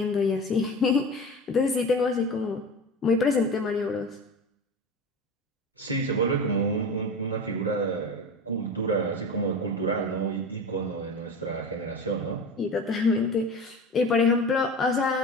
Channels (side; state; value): both; normal; correlation 0.30